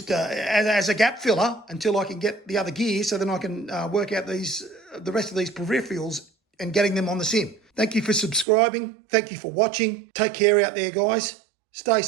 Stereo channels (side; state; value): left; drops out; at 8.5 s